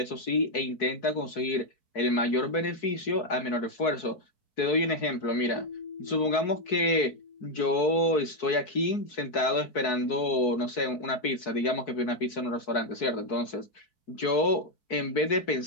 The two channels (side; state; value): right; late; 4.6 ms